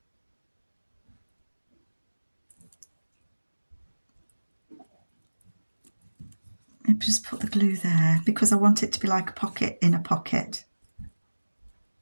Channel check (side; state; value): both; inverted; correlation -1.00